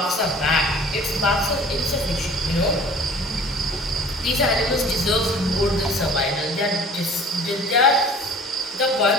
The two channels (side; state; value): both; normal; correlation 0.47